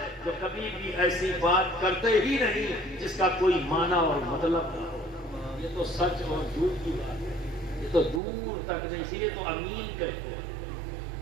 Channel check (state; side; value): drops out; left; at 8.2 s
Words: جو کبھی بھی ایسی بات کرتے ہی نہیں جس کا کوئی معنی اور مطلب نہ ہو۔ یہ تو سچ اور جھوٹ کی بات ہے، یہ تو دور تک نہیں، اسی لیے تو امین کہتے ہیں۔